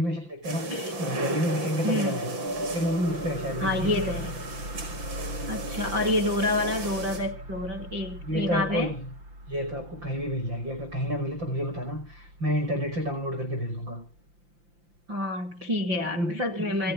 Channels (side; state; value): left; late; 5.8 ms